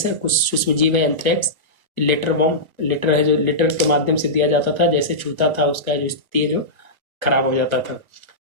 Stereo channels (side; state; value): left; late; 1.2 ms